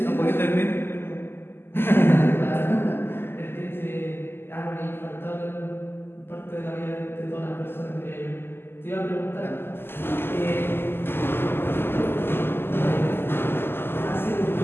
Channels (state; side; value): late; right; 0.11 ms